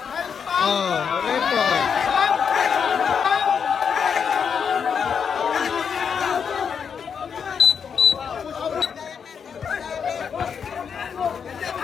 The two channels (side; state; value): right; quieter; 6.8 dB